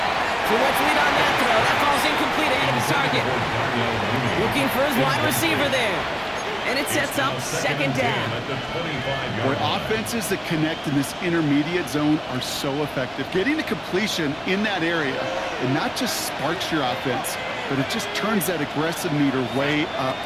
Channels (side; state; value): both; identical; correlation 1.00